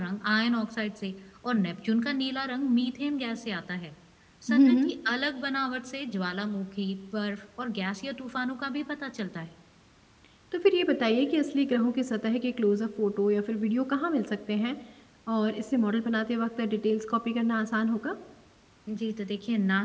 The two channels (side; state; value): both; identical; correlation 1.00